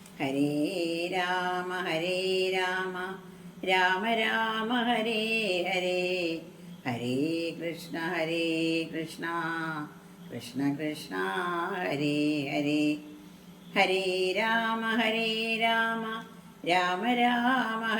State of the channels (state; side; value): identical; both; correlation 1.00